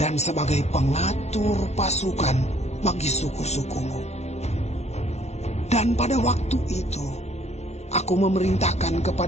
dan sebagai pengatur pasukan bagi suku-sukumu. Dan pada waktu itu, aku memerintahkan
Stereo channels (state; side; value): late; right; 0.32 ms